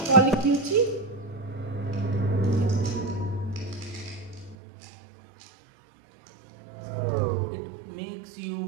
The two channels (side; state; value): left; drops out; at 4.5 s